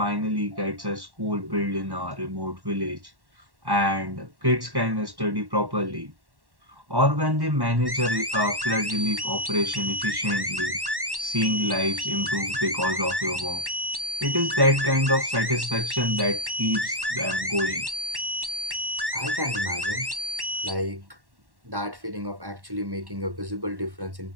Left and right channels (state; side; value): late; left; 1.1 ms